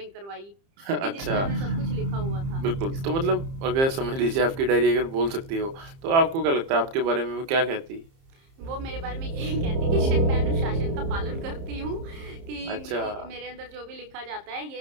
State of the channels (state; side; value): late; left; 30 ms